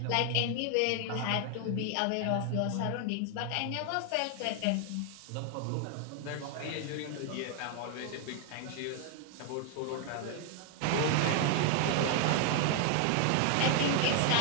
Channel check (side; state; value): both; different; correlation 0.00